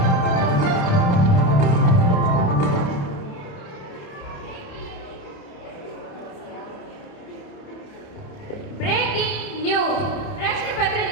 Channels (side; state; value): right; late; 28 ms